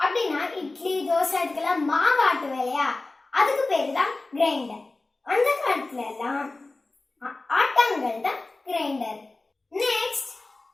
அப்படின்னா இட்லி தோசை இதுக்கெல்லாம் மாவு ஆட்டுவோம் இல்லையா, அதுக்கு பேர் தான் கிரைண்டர். அந்த காலத்துல எல்லாம் ஆட்டாங்கல் தான் grinder. Next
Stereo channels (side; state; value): right; quieter; 3.2 dB